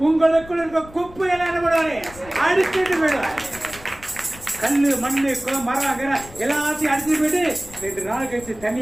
உங்களுக்குள் இருக்க குப்பை எல்லாம் என்ன பண்ணுவாரு? அடிச்சுட்டு போயிடுவார். கல்லு மண்ணு குளம் மரம் எல்லாத்தையும் அடிச்சுட்டு போயிட்டு 2 நாள் கழிச்சு தண்ணி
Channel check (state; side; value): noise; left; rumble, 19 dB below the sound